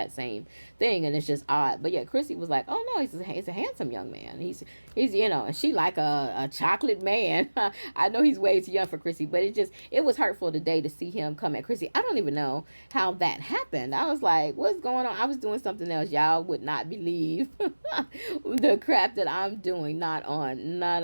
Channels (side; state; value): both; inverted; correlation -1.00